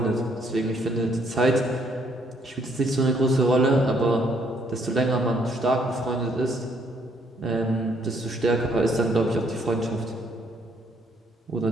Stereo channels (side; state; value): both; normal; correlation 0.68